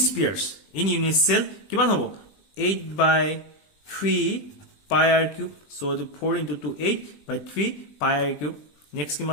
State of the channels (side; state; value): right; late; 20 ms